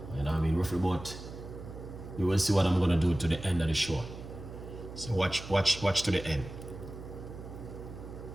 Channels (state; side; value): noise; right; hum, 12 dB below the sound